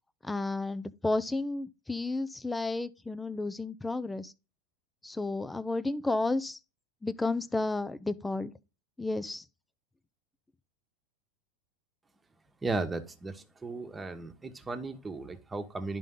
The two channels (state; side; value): normal; both; correlation 0.91